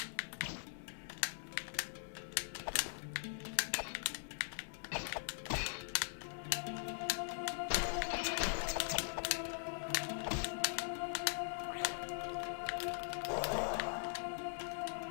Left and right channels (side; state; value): right; silent; digital silence